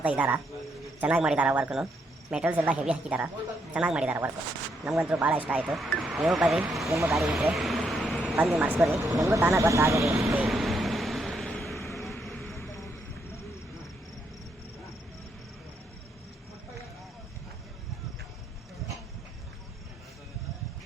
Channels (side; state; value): both; normal; correlation 0.77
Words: ಇದ್ದಾರೆ, ಚೆನ್ನಾಗಿ ಮಾಡಿದ್ದಾರೆ ವರ್ಕನ್ನು. ಮೆಟೀರಿಯಲ್ಸ್ ಎಲ್ಲ ಹೆವಿ ಹಾಕಿದ್ದಾರೆ, ಚೆನ್ನಾಗಿ ಮಾಡಿದ್ದಾರೆ ವರ್ಕು. ನಮಗಂತೂ ಭಾಳ ಇಷ್ಟ ಆಯಿತು. ನೀವು ಬರ್ರಿ, ನಿಮ್ಮ ಗಾಡಿ ಇದ್ದರೆ ಬಂದು ಮಾಡಿಸ್ಕೊರಿ, ನಿಮಗೂ ತಾನೇ ಗೊತ್ತಾಗಲಿ.